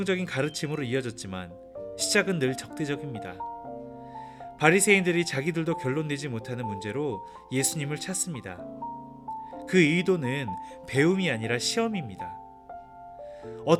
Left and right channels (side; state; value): both; identical; correlation 1.00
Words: 가르침으로 이어졌지만 시작은 늘 적대적입니다. 바리새인들이 자기들도 결론 내지 못하는 문제로 예수님을 찾습니다. 그 의도는 배움이 아니라 시험입니다.